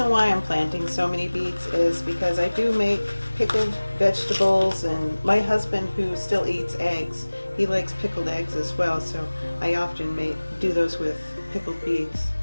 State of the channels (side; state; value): both; inverted; correlation -1.00